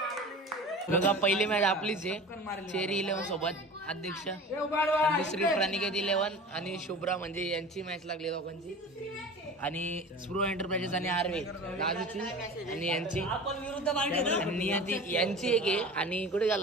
बघा पहिली मॅच आपलीच आहे. चेरी 11 सोबत अध्यक्ष, दुसरी प्रणिकेत 11 आणि शुभ्रा म्हणजे यांची मॅच लागली दोघांची. आणि स्प्रो एंटरप्राइजेस आणि आर्वे राजूची आणि यांची आणि नियती यांची एक आहे. आणि कुठे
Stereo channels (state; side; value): normal; both; correlation 0.37